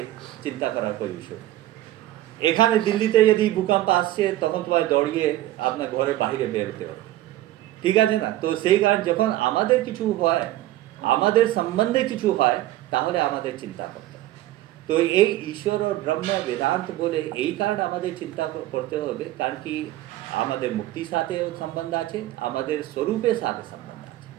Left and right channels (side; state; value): left; quieter; 15.1 dB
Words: চিন্তা করার কোনো বিষয় নেই। এখানে দিল্লিতে যদি ভূকম্প আসছে তখন তোমার দৌড়িয়ে আপনার ঘরের বাইরে বেরোতে হবে, ঠিক আছে না? তো সেই কারণে যখন আমাদের কিছু হয়, আমাদের সম্বন্ধে কিছু হয়, তাহলে আমাদের চিন্তা করতে হবে। তো এই ঈশ্বর ও ব্রহ্ম বেদান্ত বলে এই কারণে আমাদের চিন্তা করতে হবে, কারণ কি আমাদের মুক্তির সাথেও সম্বন্ধ আছে, আমাদের স্বরূপের সাথে সম্বন্ধ আছে,